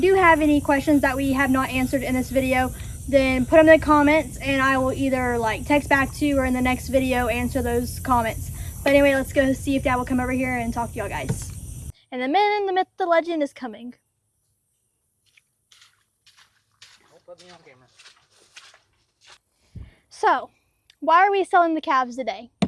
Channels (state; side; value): identical; both; correlation 1.00